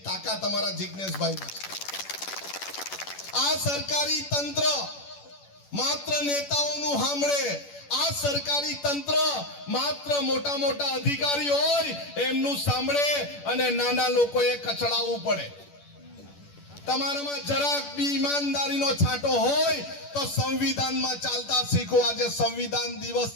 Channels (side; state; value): right; late; 10 ms